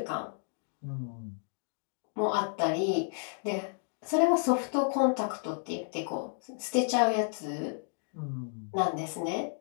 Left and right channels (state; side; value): silent; right; 57 dB below the other